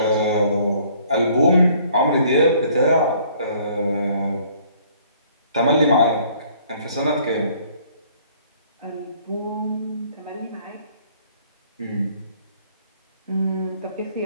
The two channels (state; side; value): inverted; both; correlation -0.60